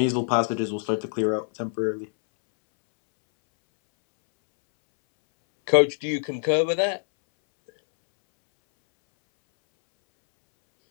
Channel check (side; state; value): right; silent; 63 dB below the other